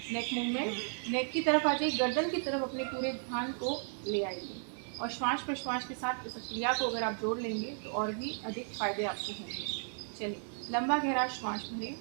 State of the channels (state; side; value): silent; left; 55 dB below the other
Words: नेक मूवमेंट। नेक की तरफ आ जाइए, गर्दन की तरफ अपने पूरे ध्यान को ले आइए और श्वास प्रश्वास के साथ इस क्रिया को अगर आप जोड़ लेंगे तो और भी अधिक फायदे आपको होंगे। चलिए लंबा गहरा श्वास भरें